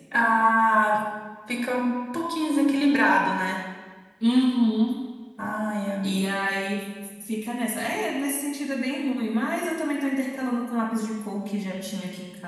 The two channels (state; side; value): identical; both; correlation 1.00